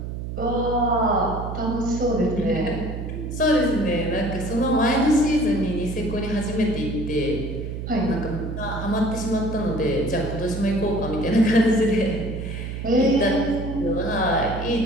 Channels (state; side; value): noise; right; hum, 6 dB below the sound